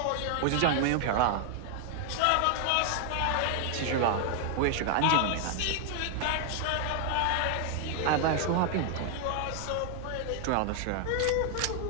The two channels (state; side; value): different; both; correlation 0.00